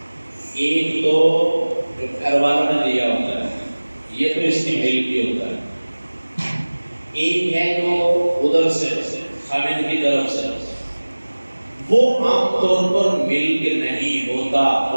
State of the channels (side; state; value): both; inverted; correlation -1.00